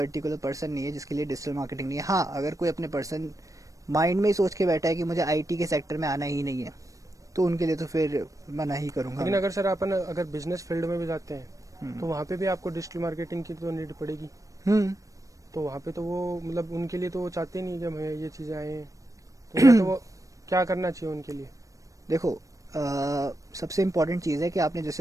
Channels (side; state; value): left; late; 0.16 ms